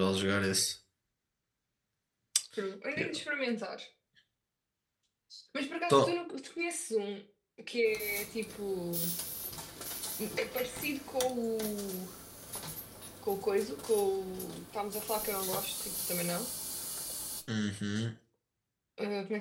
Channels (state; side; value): identical; both; correlation 1.00